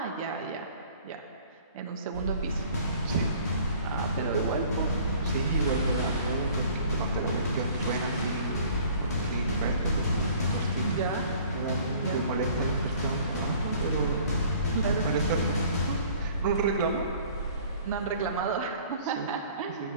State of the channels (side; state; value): both; inverted; correlation -0.52